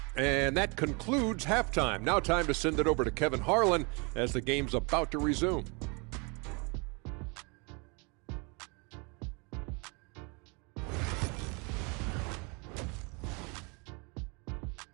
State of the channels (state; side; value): quieter; left; 31.2 dB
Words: And that concludes halftime. Now time to send it over to Kevin Harlan as the game's about to resume.